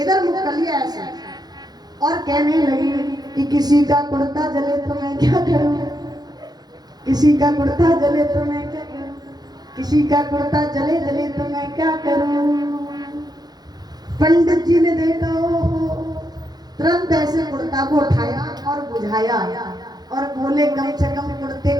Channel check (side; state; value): left; late; 0.19 ms